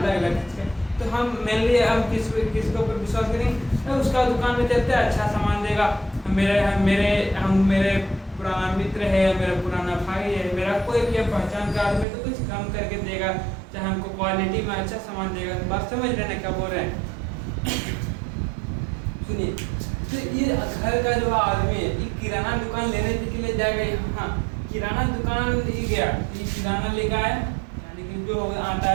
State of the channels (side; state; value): left; drops out; at 12.1 s